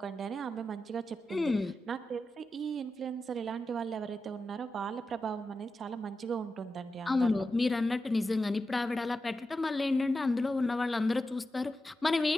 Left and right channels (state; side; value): normal; both; correlation 0.90